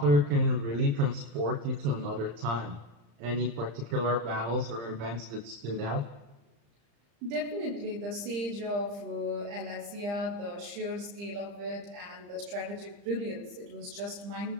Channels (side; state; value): left; late; 35 ms